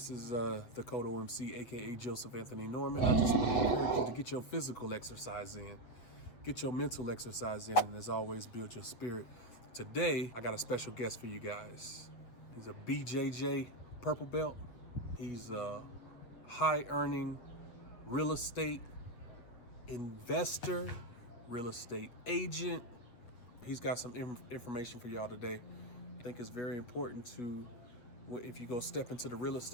is Dakota OMC, aka Joseph Anthony Norman. I just want to encourage you to get your physical exercise in, get your mental exercise in, and as always, build your spirit. Today, I got a special guest for you guys. He's a BJJ purple belt. He's a high-earning real estate investor, real estate agent. He's got some information for y'all today. I think it's very important to, if you go step into the real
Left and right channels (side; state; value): right; late; 7.9 ms